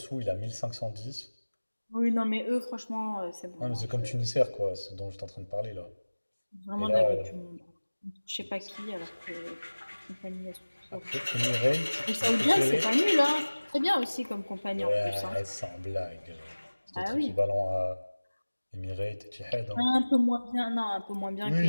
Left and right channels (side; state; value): both; inverted; correlation -1.00